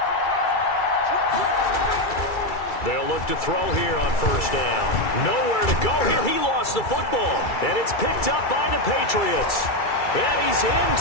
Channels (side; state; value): right; late; 2.3 ms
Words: They'll look to throw here on 1st down. Nowhere to go here. He lost the football. And it's picked up by the Patriots. And he's